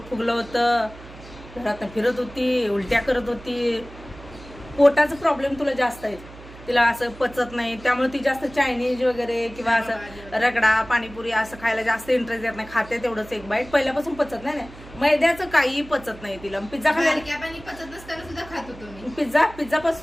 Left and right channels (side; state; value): right; noise; hum, 18 dB below the sound